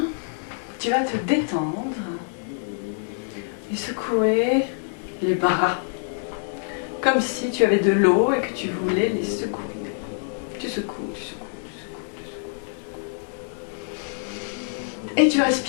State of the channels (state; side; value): silent; right; 56 dB below the other